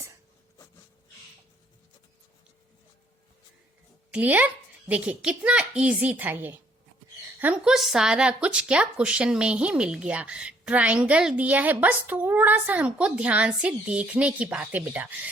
Clear? देखिए कितना इजी था ये, हमको सारा कुछ क्या क्वेश्चन में ही मिल गया। ट्राइंगल दिया है, बस थोड़ा सा हमको ध्यान से देखने की बात है बेटा।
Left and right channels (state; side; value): normal; both; correlation 0.65